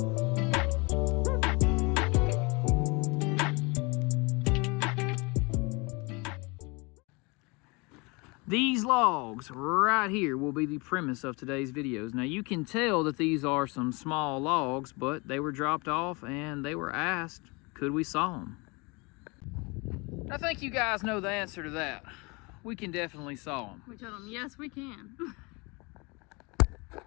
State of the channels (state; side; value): quieter; right; 27.8 dB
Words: These logs right here will be the premise of today's videos. Now you can tell that these are some small logs, but they were dropped off and they were asked, could we saw them? I think you guys know the answer to that. We can definitely saw them. We told them, yes, we can.